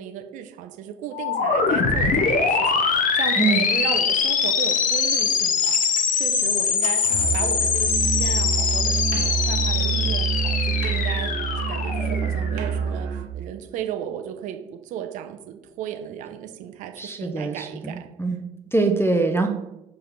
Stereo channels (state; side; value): normal; both; correlation 0.23